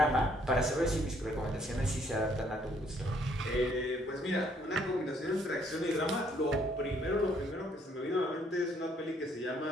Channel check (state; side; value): normal; both; correlation 0.66